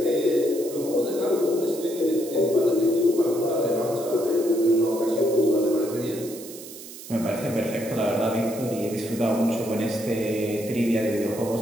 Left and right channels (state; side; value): noise; right; hiss, 14 dB below the sound